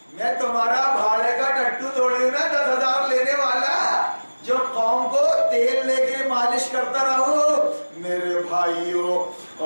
میں تمہارا بھاڑے کا ٹٹو توڑی ہوں نا, 10,000 لینے والا, جو قوم کو تیل لے کے مالش کرتا رہو. میرے بھائیوں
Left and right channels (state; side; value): inverted; both; correlation -1.00